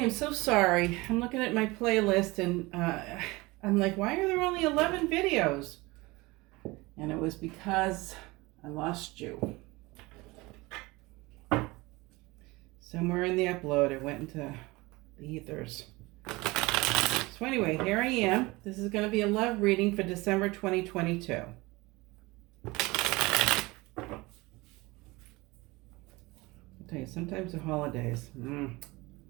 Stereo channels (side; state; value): left; quieter; 22.5 dB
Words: so sorry. I'm looking at my playlist and I'm like, why are there only 11 videos? And it was because I lost you. Somewhere in the upload, it went into the ethers. So anyway, here I am. This is going to be a love reading for December 2022. I'll tell you, sometimes the holidays.